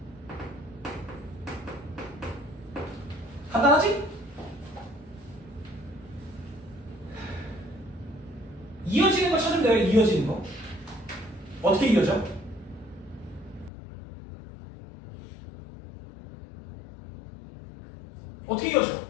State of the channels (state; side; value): drops out; right; at 13.7 s